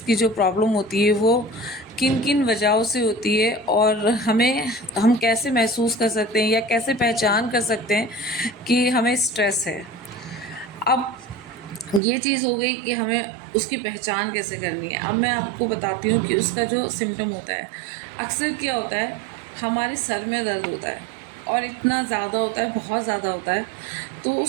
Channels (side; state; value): left; drops out; at 12.0 s